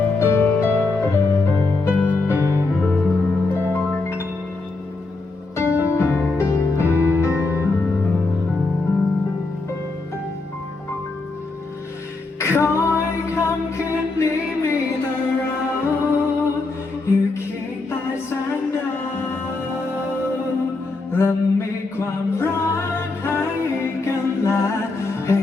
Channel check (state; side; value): quieter; right; 3.5 dB